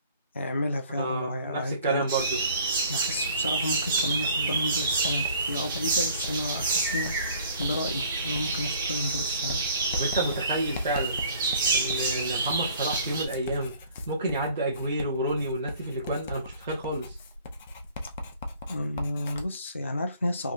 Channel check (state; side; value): inverted; both; correlation -0.55